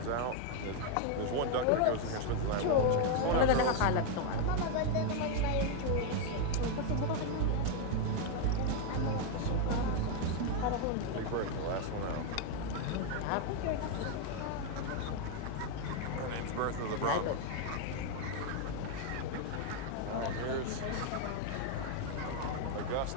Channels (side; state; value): both; different; correlation 0.01